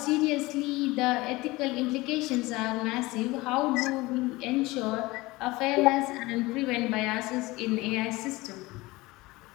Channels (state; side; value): quieter; right; 21.1 dB